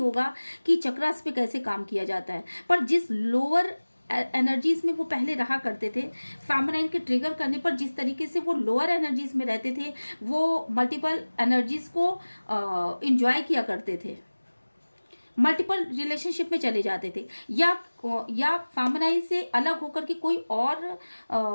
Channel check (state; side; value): inverted; both; correlation -1.00